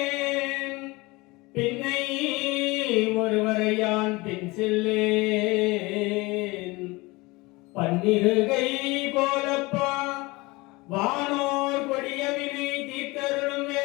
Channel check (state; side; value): quieter; right; 23.1 dB